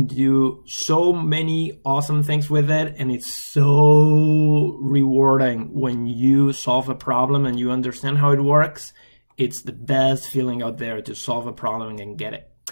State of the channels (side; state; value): both; inverted; correlation -1.00